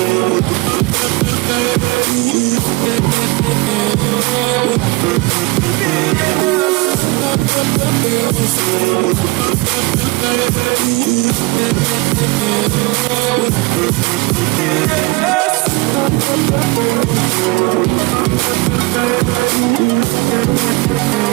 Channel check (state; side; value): quieter; left; 24.7 dB